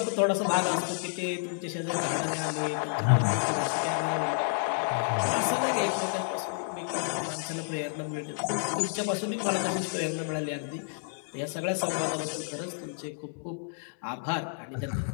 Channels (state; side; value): silent; right; digital silence